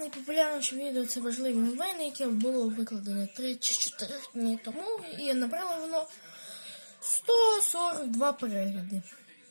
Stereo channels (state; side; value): inverted; both; correlation -1.00